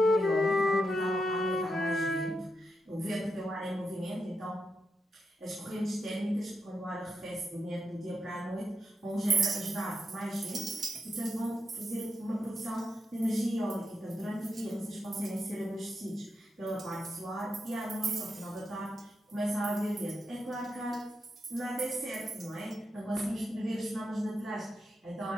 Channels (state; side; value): normal; both; correlation 0.85